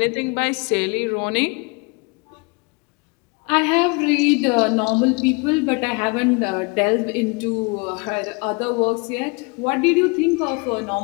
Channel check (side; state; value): right; quieter; 30.1 dB